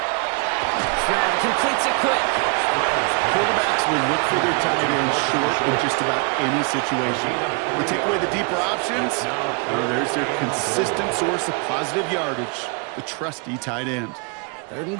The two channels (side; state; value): left; quieter; 34.1 dB